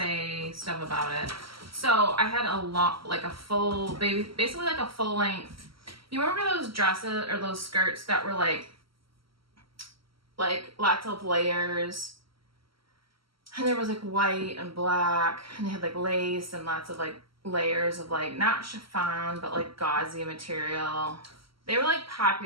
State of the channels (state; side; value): late; left; 0.75 ms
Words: stuff about it. So I had basically like a full length. You remember those dresses or those skirts that were like lots of layers, and there was like white and black, and they had like lace and lots of like layers of like not chiffon but like gauzy material. They were like